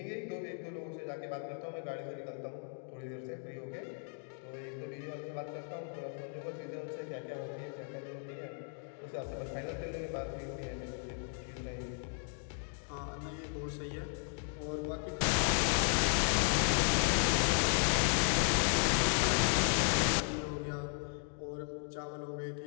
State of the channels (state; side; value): silent; right; 54 dB below the other